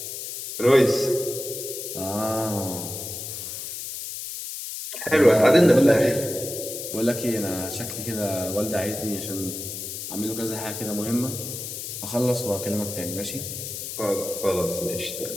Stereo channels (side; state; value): left; noise; hiss, 7 dB below the sound